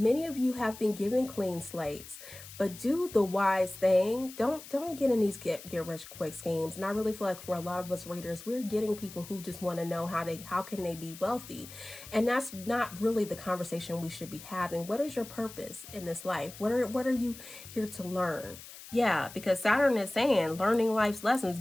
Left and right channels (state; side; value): noise; left; hiss, 16 dB below the sound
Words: of you have been given clean slates. But do the wise thing. Don't get in these get rich quick schemes. And I really feel like for a lot of us readers, we're getting people who just want to know how can they be wealthy. And that's not really the conversation we should be having. What is your purpose in this life? What are you here to learn? Yeah, because Saturn is saying learning life's lessons,